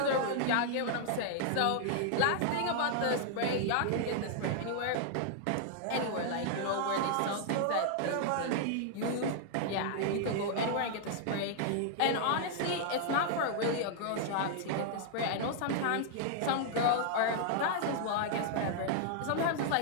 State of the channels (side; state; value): both; different; correlation -0.01